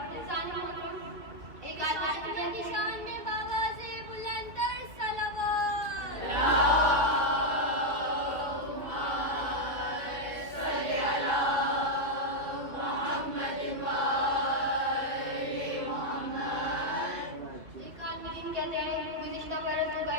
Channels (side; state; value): left; late; 2.7 ms